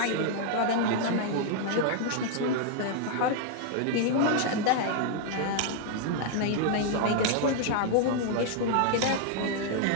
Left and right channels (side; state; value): both; different; correlation 0.00